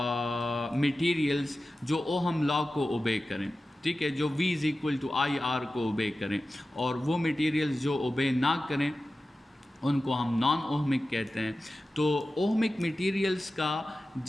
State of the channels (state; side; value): normal; both; correlation 0.94